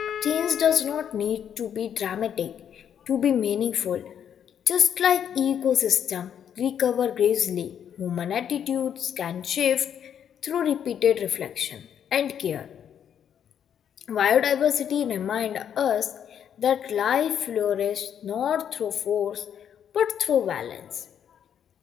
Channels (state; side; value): quieter; right; 8.8 dB